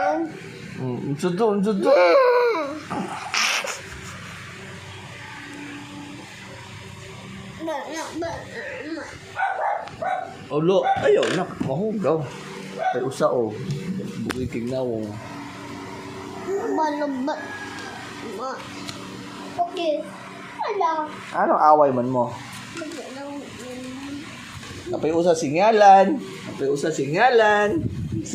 Unsudo. Olo, ayaw na. Mahugaw. Ay usa o. Buhay kignawong. Balabot. Okay. Ala. Anong away man mo? Napay usa singalan.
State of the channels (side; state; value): both; identical; correlation 1.00